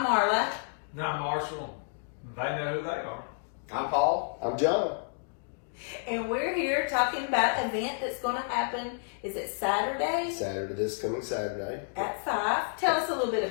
Marla. Now Marshall, they know who they are. I'm Paul. I'm John. And we're here talking about an event that's going to happen. Is it Saturday? This coming Saturday. At 5. Tell us a little bit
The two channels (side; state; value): right; silent; digital silence